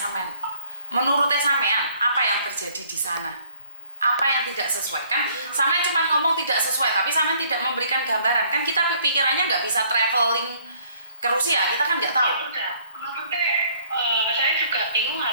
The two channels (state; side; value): inverted; both; correlation -0.61